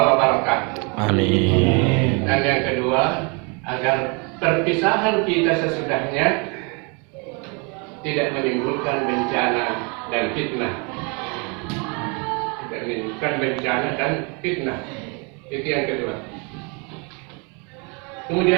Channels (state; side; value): quieter; left; 32.8 dB